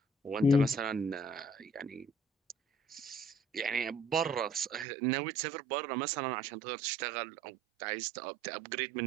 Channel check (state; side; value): drops out; left; at 4.9 s